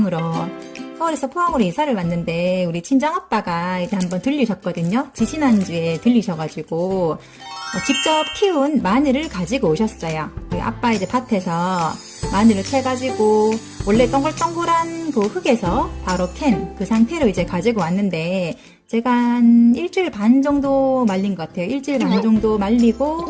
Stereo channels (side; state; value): both; identical; correlation 1.00